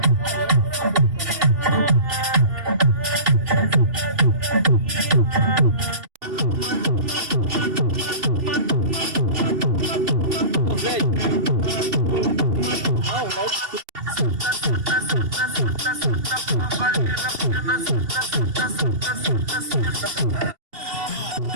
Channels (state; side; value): late; left; 2.7 ms